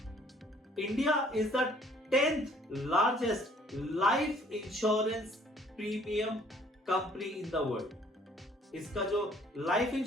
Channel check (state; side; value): normal; both; correlation 0.59